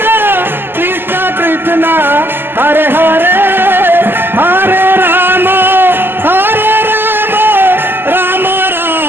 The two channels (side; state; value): left; late; 0.10 ms